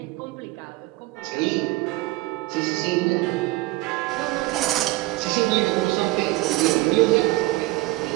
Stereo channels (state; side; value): quieter; left; 20.0 dB